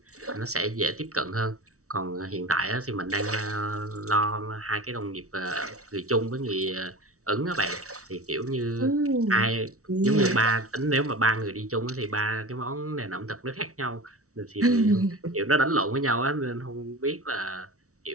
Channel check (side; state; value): left; late; 0.65 ms